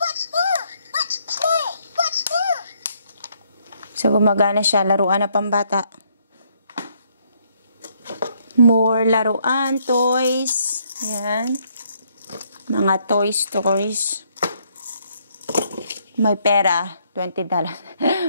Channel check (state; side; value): inverted; both; correlation -0.70